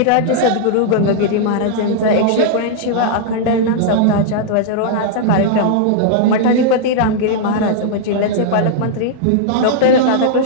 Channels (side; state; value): both; different; correlation -0.01